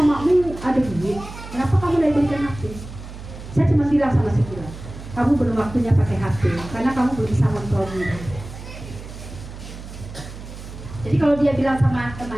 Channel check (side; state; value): right; noise; hum, 13 dB below the sound